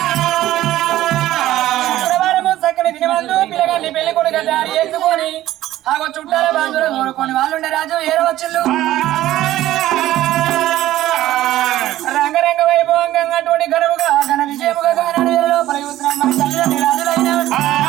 శుక్రవారము చక్కని దినమందు పిల్లగాన్ని పెళ్లి కొడుకు తయారు చేసుకొని ఆగో చుట్టాల బాంధువులు కోరుకొని వాళ్ళు ఉండే రాజు ఏరవచ్చులు. రంగరంగ వైభవంగా అటువంటి ఘనముగా ఘన విజయముగా కానాడు లోపల యూత్రం మన తల్లిదండ్రి రాజులైన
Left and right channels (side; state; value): left; quieter; 14.4 dB